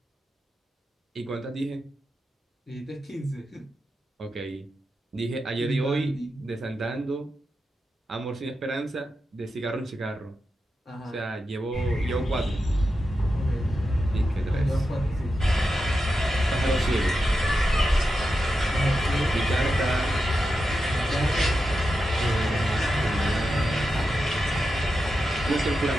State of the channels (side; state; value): both; normal; correlation 0.89